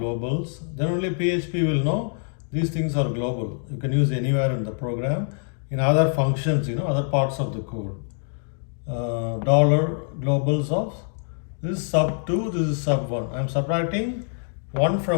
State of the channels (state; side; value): silent; right; 62 dB below the other